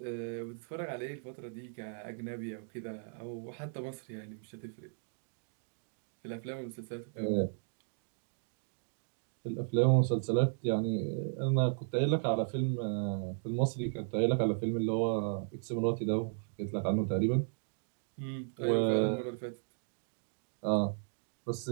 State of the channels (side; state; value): left; silent; digital silence